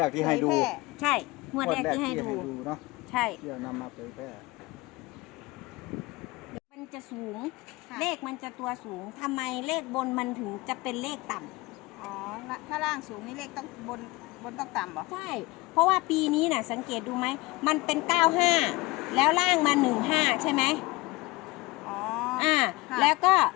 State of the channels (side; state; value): right; quieter; 22.0 dB